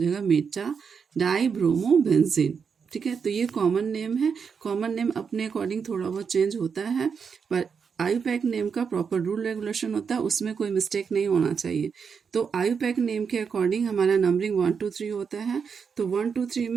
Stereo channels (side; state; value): left; quieter; 6.2 dB